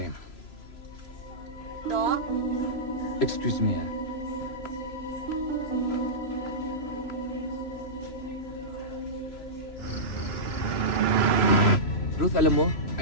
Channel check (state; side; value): late; right; 3.0 ms